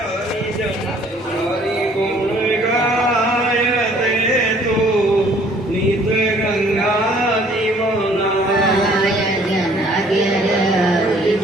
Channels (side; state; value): both; normal; correlation 0.58